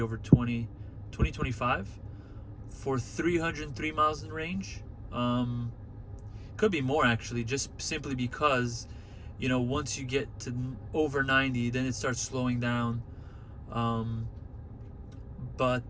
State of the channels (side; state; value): both; identical; correlation 1.00